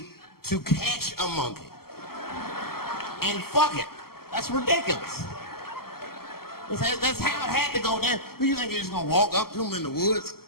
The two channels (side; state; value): right; late; 0.94 ms